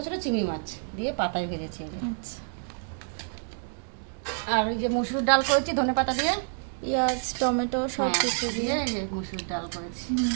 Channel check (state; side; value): silent; left; digital silence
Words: ছোটো চিংড়ি মাছ দিয়ে পাতায় ভেজেছি এই যে। আচ্ছা। আর ওই যে মসুর ডাল করেছি ধনেপাতা দিয়ে, পেঁয়াজ টমেটো সব হ্যাঁ, কিছু দিয়ে। এই যে মসুর ডাল করেছি।